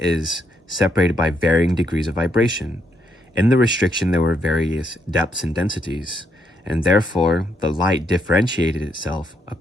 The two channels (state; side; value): normal; both; correlation 0.76